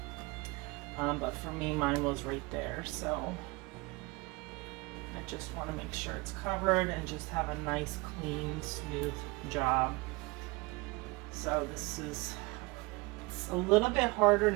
But for me, mine was right there. So I just want to make sure it's covered and just have a nice, clean, smooth job. So this is, it's a little bit harder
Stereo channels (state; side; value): quieter; left; 25.0 dB